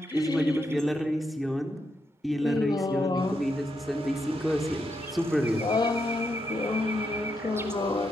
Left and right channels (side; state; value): both; normal; correlation 0.81